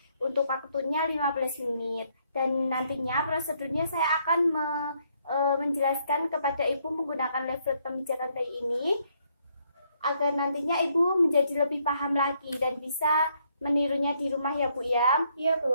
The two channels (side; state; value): both; inverted; correlation -0.72